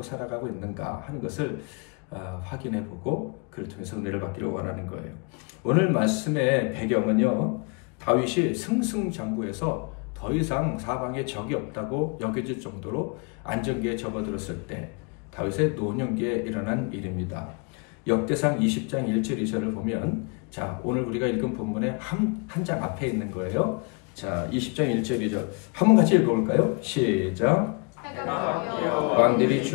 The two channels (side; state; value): right; quieter; 33.1 dB